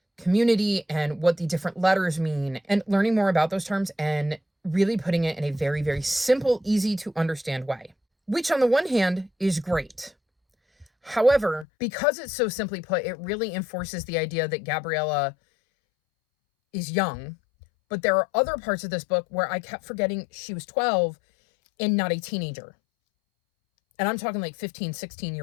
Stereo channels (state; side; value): drops out; right; at 11.7 s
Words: community and what the different letters mean, and learning more about those terms and really putting it in a very, very simple, easy to understand way, which on the one hand is great. However, because it's so simply put, it really enforces the idea that Gabriella is young. But there are other parts of this book where I kept forgetting she was 12 and not a teenager. And I'm talking like 15,